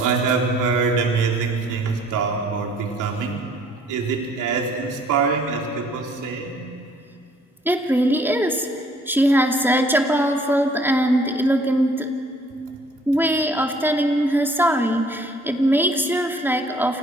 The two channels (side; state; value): both; normal; correlation 0.59